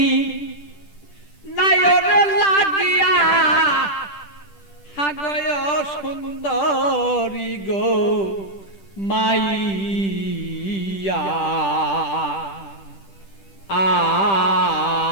নায়রে লাগিয়া হাগয় সুন্দরী গো মাইয়া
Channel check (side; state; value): right; late; 10 ms